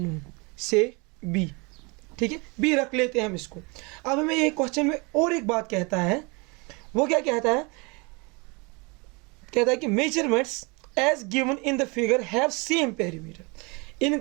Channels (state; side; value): quieter; left; 28.8 dB